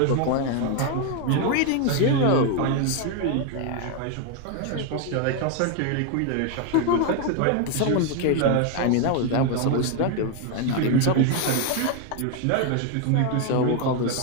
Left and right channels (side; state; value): both; different; correlation 0.01